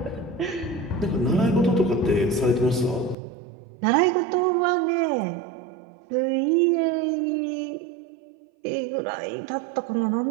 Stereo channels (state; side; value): drops out; left; at 3.2 s